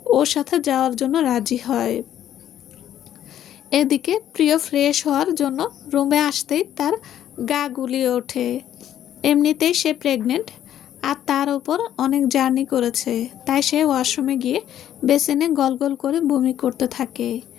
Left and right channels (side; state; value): right; quieter; 11.1 dB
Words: ওর সাথে যাওয়ার জন্য রাজি হয়। এদিকে প্রিয় ফ্রেশ হওয়ার জন্য রুমে আসতেই তার গা গুলিয়ে ওঠে। এমনিতেই সে প্রেগনেন্ট, আর তার উপর অনেক জার্নি করেছে, তাই সে ওয়াশরুমে গিয়ে বেসিনে গলগল করে বমি করতে থাকে।